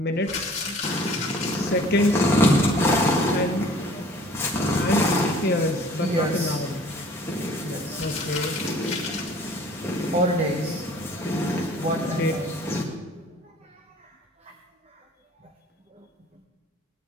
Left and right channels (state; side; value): normal; both; correlation 0.51